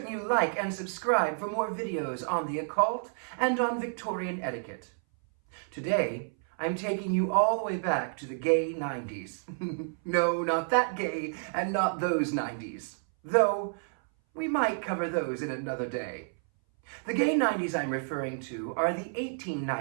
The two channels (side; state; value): left; silent; 58 dB below the other